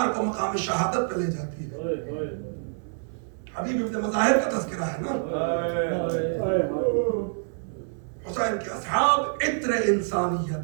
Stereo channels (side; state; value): left; silent; 60 dB below the other